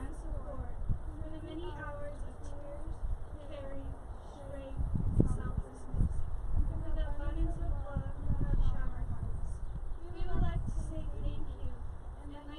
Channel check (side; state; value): both; identical; correlation 1.00